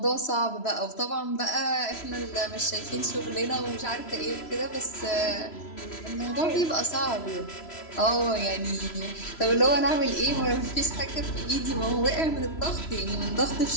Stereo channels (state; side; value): late; right; 3.0 ms